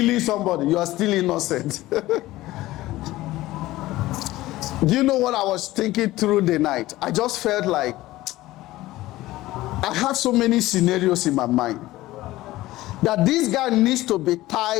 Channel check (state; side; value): quieter; right; 17.1 dB